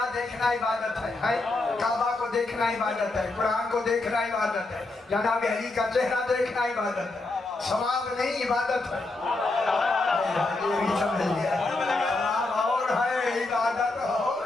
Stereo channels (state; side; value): quieter; right; 3.1 dB